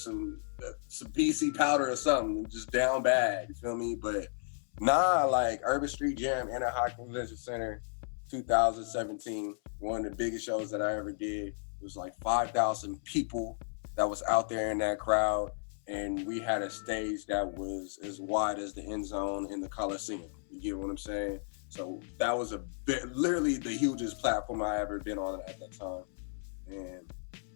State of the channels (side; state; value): right; silent; 55 dB below the other